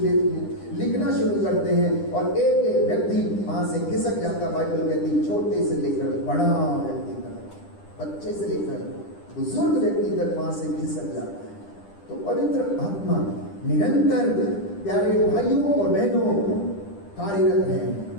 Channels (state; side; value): late; right; 10 ms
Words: लिखना शुरू करते हैं और एक एक व्यक्ति वहां से खिसक जाता। बाइबल कहती छोटे से लेकर बड़ा व्यक्ति तक, बच्चे से लेकर बुजुर्ग व्यक्ति तक वहां से खिसक जाता है। तो पवित्र आत्मा निरंतर प्यारे भाइयों और बहनों कार्यरत है।